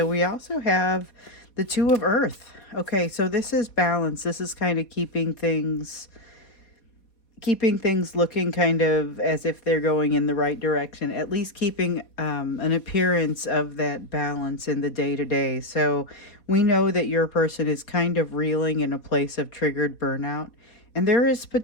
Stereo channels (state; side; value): late; right; 4.2 ms